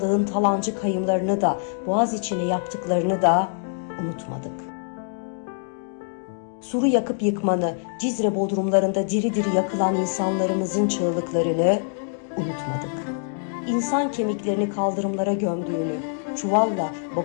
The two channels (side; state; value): right; silent; digital silence